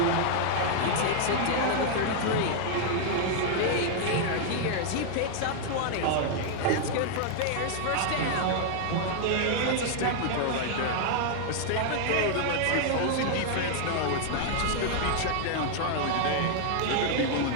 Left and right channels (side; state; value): both; different; correlation 0.00